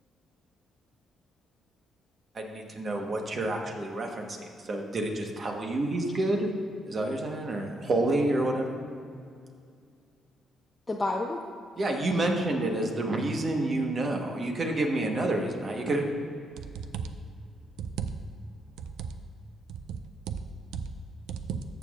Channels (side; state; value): both; normal; correlation 0.77